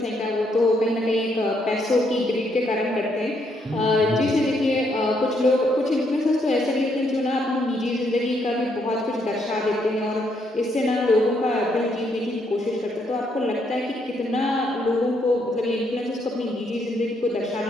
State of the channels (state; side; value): normal; both; correlation 0.74